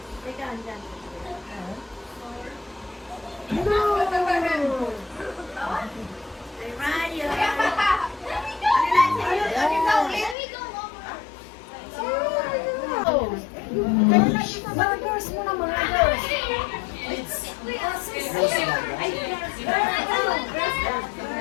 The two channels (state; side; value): drops out; right; at 10.4 s